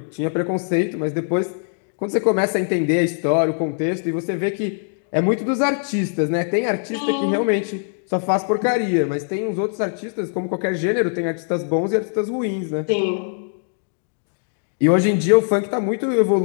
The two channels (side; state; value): right; silent; digital silence